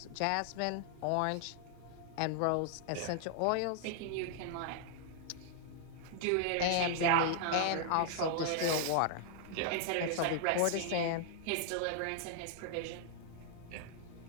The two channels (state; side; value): different; both; correlation -0.01